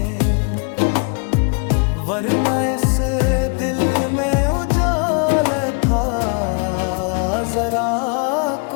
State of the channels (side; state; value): right; quieter; 37.1 dB